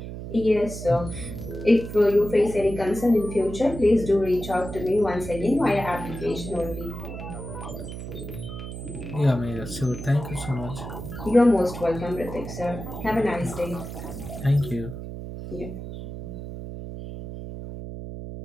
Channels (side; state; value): right; noise; hum, 9 dB below the sound